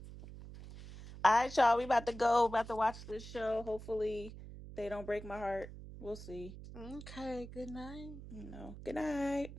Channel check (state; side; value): noise; right; hum, 13 dB below the sound